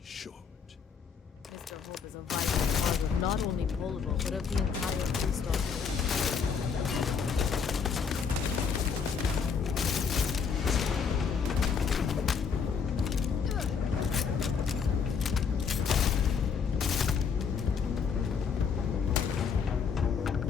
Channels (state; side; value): quieter; right; 6.1 dB